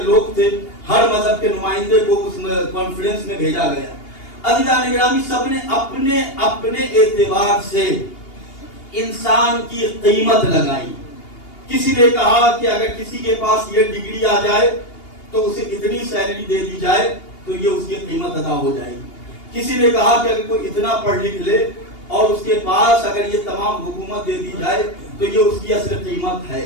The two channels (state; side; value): late; right; 2.8 ms